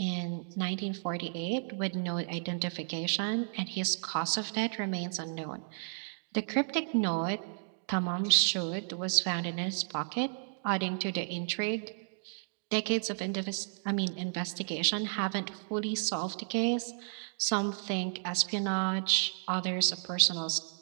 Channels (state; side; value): silent; left; digital silence